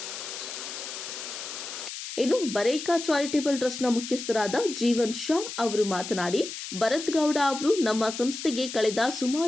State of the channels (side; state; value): left; noise; hiss, 8 dB below the sound